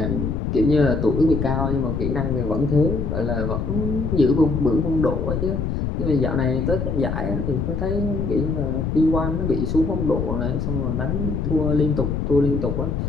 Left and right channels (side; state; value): left; noise; rumble, 1 dB below the sound